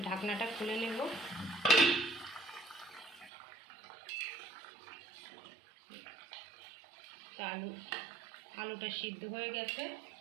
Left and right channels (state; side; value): drops out; left; at 3.3 s